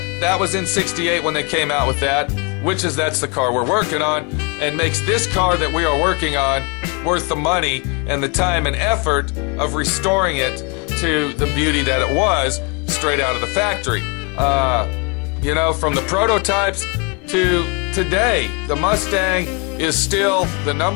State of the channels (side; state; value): right; quieter; 30.2 dB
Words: that was in 68 when they came out with that, that's the car we're working on, and makes this car that we are working on worth the money and the time and effort of restoring it to the beauty that it was straight out of the factory. You know, from the prototypes to today, the Mustang is still the